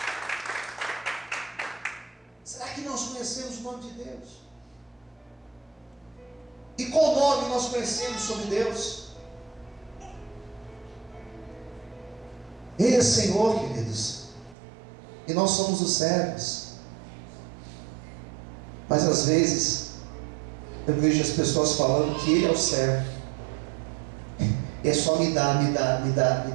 Será que nós conhecemos o nome de Deus? E qual nome nós conhecemos sobre Deus? Ele é Senhor, queridos, e nós somos os servos. Mas às vezes eu vejo as pessoas falando que Ele é o servo. É só me dá, me dá, me dá, me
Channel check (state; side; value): drops out; left; at 14.6 s